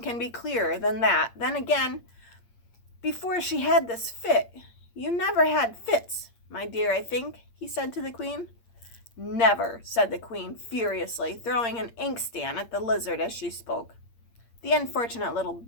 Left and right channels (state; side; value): late; right; 8.7 ms